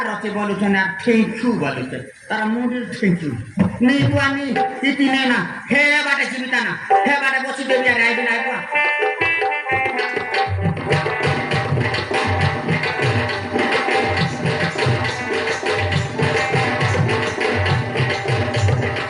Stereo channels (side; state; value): both; identical; correlation 1.00